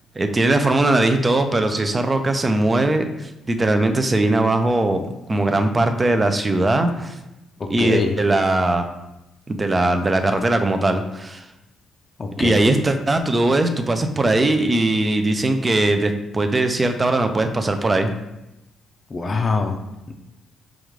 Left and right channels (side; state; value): both; normal; correlation 0.89